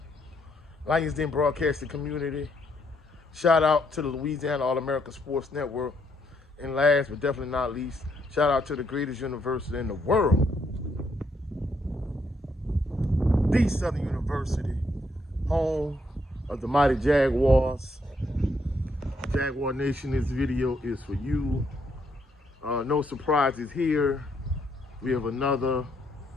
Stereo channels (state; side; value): normal; both; correlation 0.74